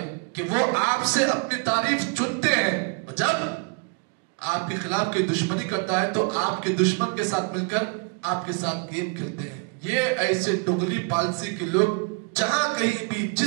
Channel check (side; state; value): left; quieter; 29.9 dB